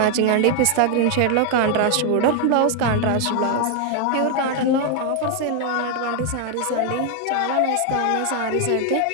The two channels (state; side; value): different; both; correlation 0.00